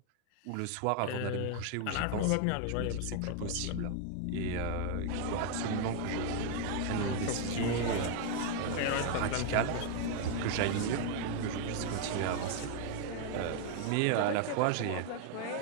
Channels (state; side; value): different; both; correlation 0.00